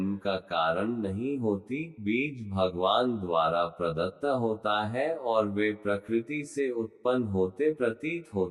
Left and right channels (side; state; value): both; identical; correlation 1.00